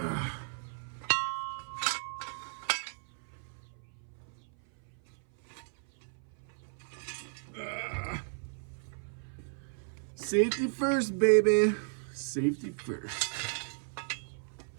Safety first, baby. Safety first.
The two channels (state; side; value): silent; left; 55 dB below the other